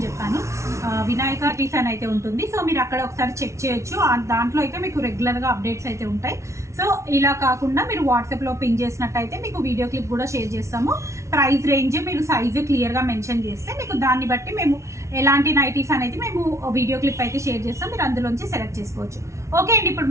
చెప్పాను. వినాయక నైటీస్ అని అయితే ఉంటుంది. సో మీరు అక్కడ ఒకసారి చెక్ చేయొచ్చు. దాంట్లో అయితే మీకు రెగ్యులర్గా అప్డేట్స్ అయితే ఉంటాయి. సో ఇలా కాకుండా మీరు వాట్సాప్లో పింగ్ చేసినట్టయితే మీకు వీడియో క్లిప్ కూడా షేర్ చేస్తాము. ప్రైస్ రేంజ్ మీరు సైజు క్లియర్గా మెన్షన్ చేస్తే మీకు దాన్ని బట్టి మేము ఎలాంటి నైటీస్ అనేది మేము వీడియో క్లిప్ అయితే షేర్ చేస్తాం. మీరు అందులోంచి సెలెక్ట్ చేసుకోవచ్చు. ఓకే అండి, ఇప్పుడు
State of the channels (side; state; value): left; late; 0.14 ms